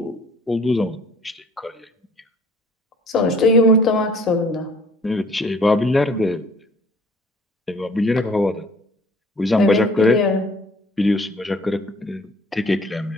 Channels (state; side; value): normal; both; correlation 0.54